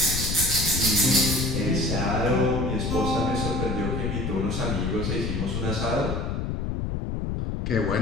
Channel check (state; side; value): noise; left; rumble, 2 dB below the sound